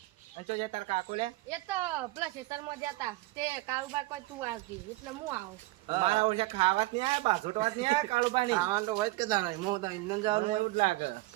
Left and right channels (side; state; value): left; quieter; 20.1 dB